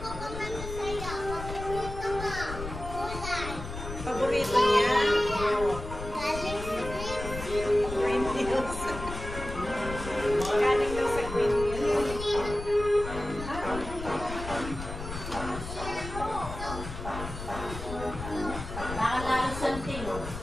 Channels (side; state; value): left; noise; rumble, 8 dB below the sound